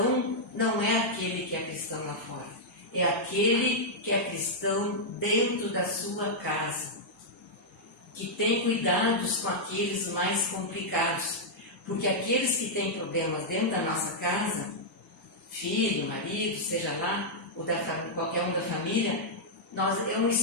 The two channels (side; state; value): both; normal; correlation -0.06